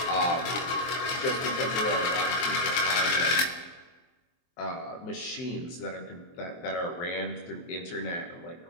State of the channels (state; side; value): late; right; 23 ms